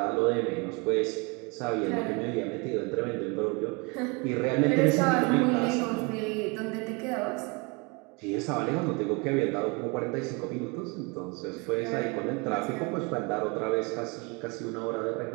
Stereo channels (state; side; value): quieter; left; 29.9 dB